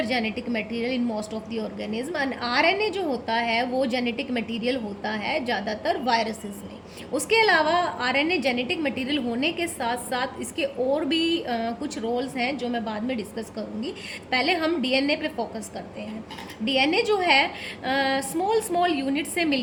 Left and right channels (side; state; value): both; identical; correlation 1.00